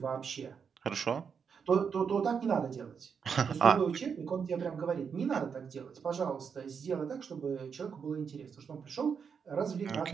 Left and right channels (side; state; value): left; quieter; 6.5 dB